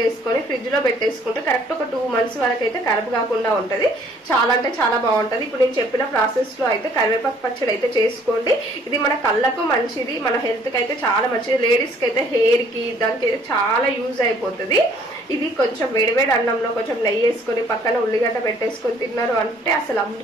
వేసుకొని ఫ్రిడ్జ్ లో పెట్టేసుకుంటే కరెక్ట్ ఒక 2 months వరకు అయితే ఖరాబ్ కాకుండా ఉంటది. చాలా అంటే చాలా బాగుంటది. ఇప్పుడు నేను చెప్పిన ప్రాసెస్ లో అయితే కరివేపాకు పచ్చడి అయితే చేసుకోండి. ఇది మన కళ్ళకు మంచిది, మన హెల్త్ కి అయితే చాలా మంచిది. లేడీస్ కి అయితే హెయిర్ కి దానికి అయితే చాలా యూజ్ అయిపోతుంది. ఇది కొంచెం వేడివేడి అన్నంలో కొంచెం నెయ్యి వేసుకొని పక్కన ఉల్లిగడ్డ పెట్టేసుకొని తిన్నారు అంటే అసలు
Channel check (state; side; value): normal; both; correlation 0.60